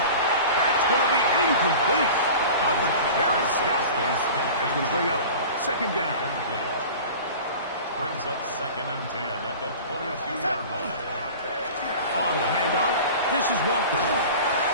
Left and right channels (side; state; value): both; inverted; correlation -0.38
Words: going to be incomplete. Coverage very stout there. That's going to bring up 2nd down. Brings up 2nd and 10 at the 22-yard line. On the handoff, this is Walker.